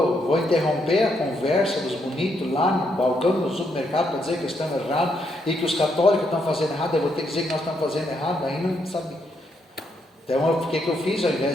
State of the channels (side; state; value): both; normal; correlation 0.77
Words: interromper a conversa dos bonitos lá no balcão do supermercado para dizer que estamos errados e que os católicos estão fazendo errado, eu vou ter que dizer que nós estamos fazendo errado, aí não sabe. Então, o que eu fiz? Ao